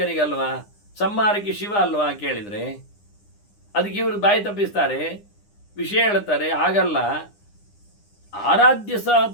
ಸಂಹಾರಕ್ಕೆ ಶಿವ ಅಲ್ವಾ ಕೇಳಿದರೆ ಅದಕ್ಕೆ ಇವರು ಬಾಯಿ ತಪ್ಪಿಸ್ತಾರೆ, ವಿಷಯ ಹೇಳ್ತಾರೆ. ಹಾಗಲ್ಲ, ಆರಾಧ್ಯ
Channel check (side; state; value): right; late; 9.8 ms